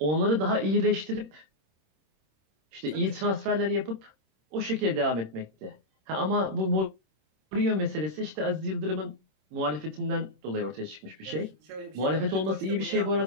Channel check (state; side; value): late; left; 26 ms